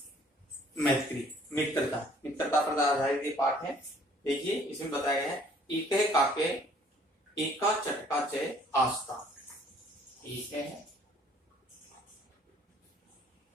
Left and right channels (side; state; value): both; normal; correlation 0.58